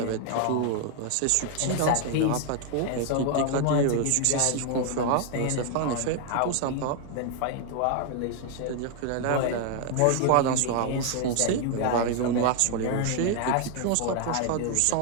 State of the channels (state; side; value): different; both; correlation 0.00